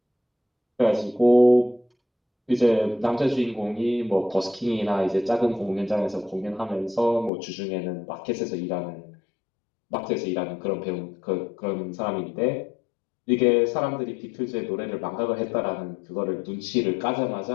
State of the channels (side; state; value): right; drops out; at 7.3 s